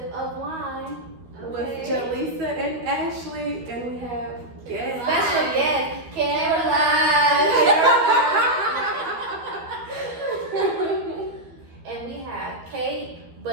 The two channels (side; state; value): left; late; 12 ms